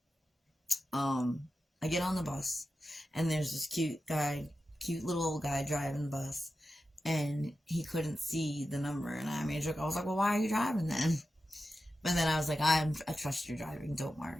I get on the bus. And there's this cute little old guy driving the bus, and he couldn't see the number, and I made a joke. I was like, well, why are you driving then? But then I was like, I trust your driving, don't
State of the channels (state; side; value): normal; both; correlation 0.92